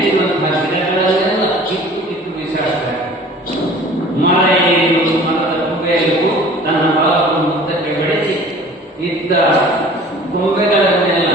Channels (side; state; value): both; normal; correlation 0.46